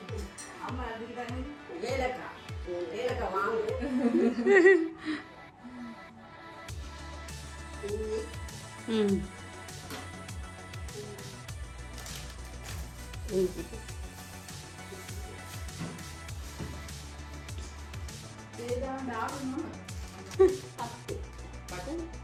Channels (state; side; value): identical; both; correlation 1.00